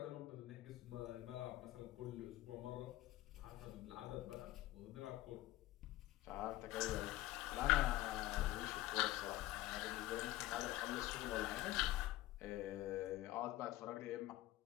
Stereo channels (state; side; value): quieter; right; 16.3 dB